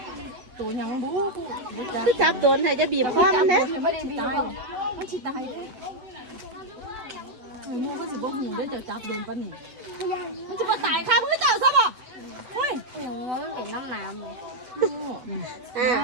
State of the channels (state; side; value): late; left; 8.0 ms